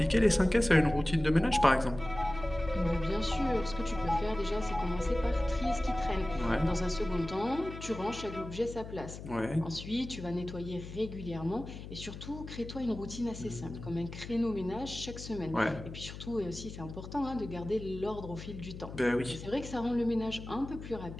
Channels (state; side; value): noise; left; hum, 11 dB below the sound